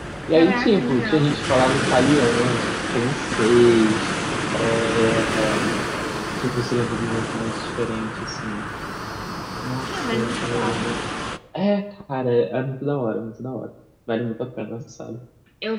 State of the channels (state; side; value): identical; both; correlation 1.00